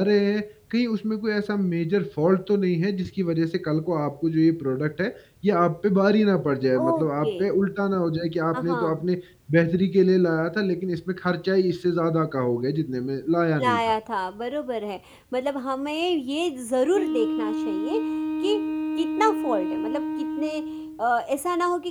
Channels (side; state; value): both; identical; correlation 1.00